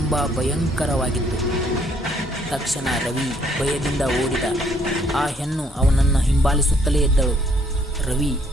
ಭಯಂಕರವಾಗಿತ್ತು. ತಕ್ಷಣ ರವಿ ಭಯದಿಂದ ಓಡಿದ. ಆ ಹೆಣ್ಣು ಅವನನ್ನು ಹಿಂಬಾಲಿಸುತ್ತಲೇ ಇದ್ದಳು. ರವಿ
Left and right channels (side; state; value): both; normal; correlation 0.66